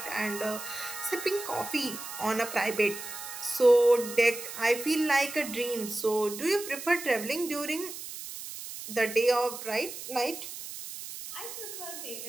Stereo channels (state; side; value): noise; right; hiss, 10 dB below the sound